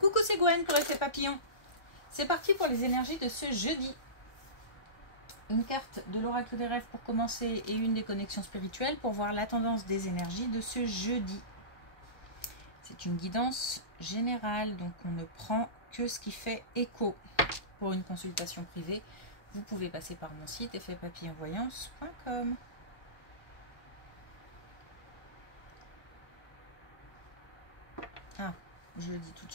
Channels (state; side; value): late; right; 1.3 ms